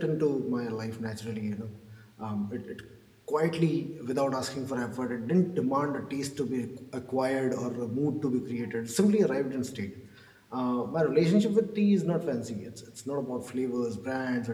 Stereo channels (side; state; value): both; identical; correlation 1.00